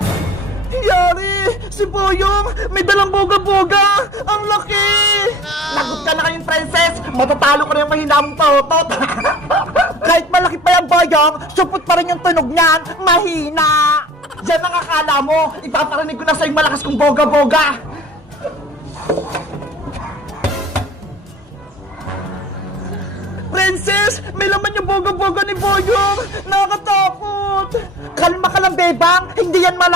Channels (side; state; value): both; normal; correlation 0.46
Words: Yari! Si Boyong! May dalang boga-boga! Ang laki! Lagot ka na kayong, Princess! Matatalo ko na yung mahina mong turotot! Kahit malaki pa yung Boyong, supot pa rin yung tunog niyan! Mahina! Yan ang akala mo! Ipaparinig ko na sa'yo malakas kong boga-boga! Princess! May laman yung boga-boga ni Boyong! Nakakatakot! Kalma ka lang, Bebang! Hindi yan